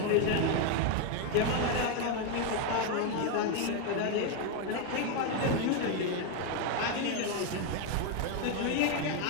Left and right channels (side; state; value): both; different; correlation 0.01